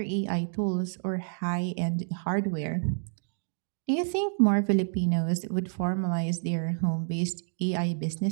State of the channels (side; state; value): left; silent; digital silence